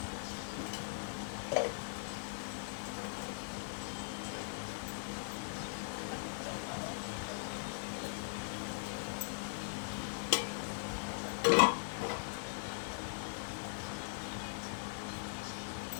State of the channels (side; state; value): right; silent; digital silence